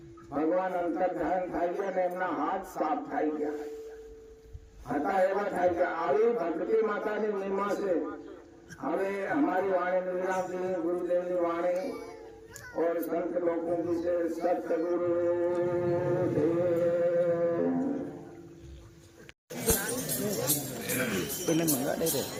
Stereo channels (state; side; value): identical; both; correlation 1.00